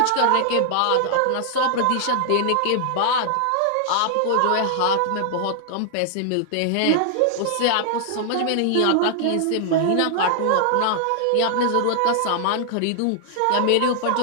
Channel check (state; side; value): different; both; correlation -0.01